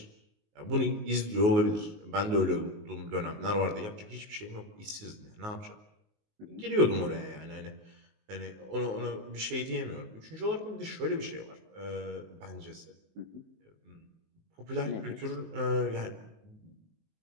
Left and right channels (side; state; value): left; late; 19 ms